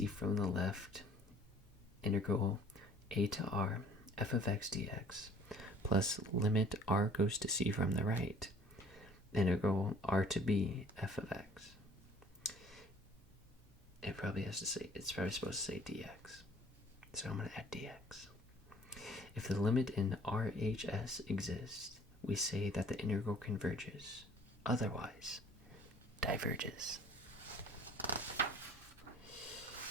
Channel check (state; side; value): normal; both; correlation 0.53